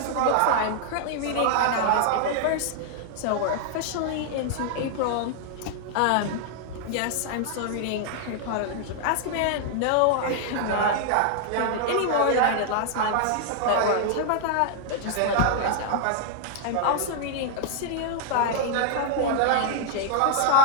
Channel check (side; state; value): both; different; correlation 0.00